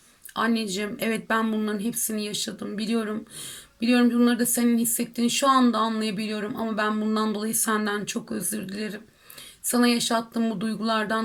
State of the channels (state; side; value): identical; both; correlation 1.00